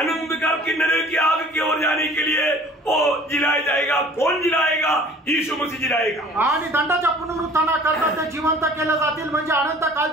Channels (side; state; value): both; normal; correlation 0.49